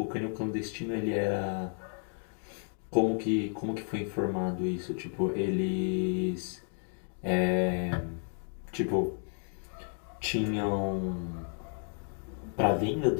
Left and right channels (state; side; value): silent; right; 56 dB below the other